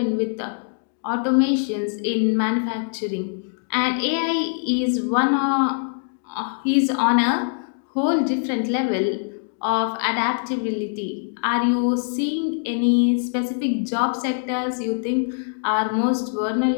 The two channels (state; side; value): silent; right; digital silence